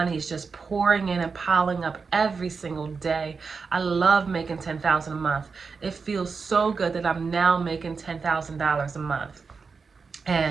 is just pouring in and piling up every single day. I love making $10,000 a month. It feels so good that I'm now making $10,000 a month.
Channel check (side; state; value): left; quieter; 5.0 dB